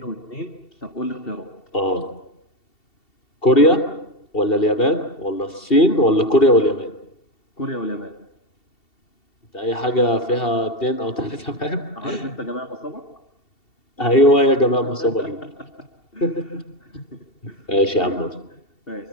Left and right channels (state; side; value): late; right; 2.7 ms